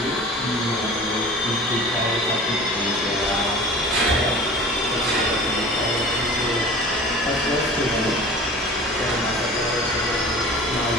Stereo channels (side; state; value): both; normal; correlation 0.41